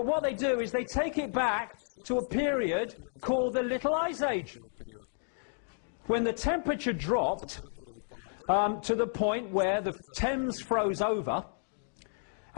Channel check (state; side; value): silent; right; digital silence